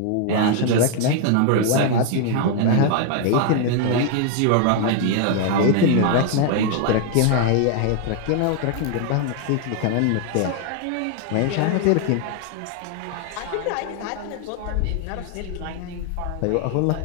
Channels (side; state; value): both; different; correlation 0.00